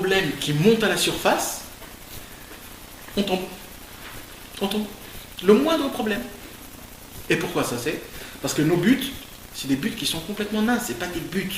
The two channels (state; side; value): identical; both; correlation 1.00